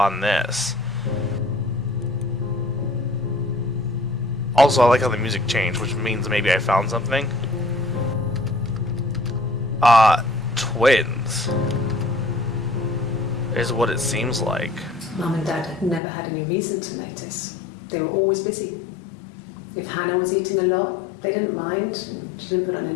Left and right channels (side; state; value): right; drops out; at 16.0 s